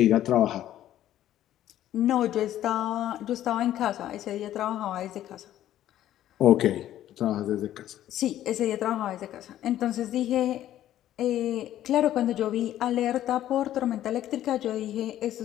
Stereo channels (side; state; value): right; quieter; 12.5 dB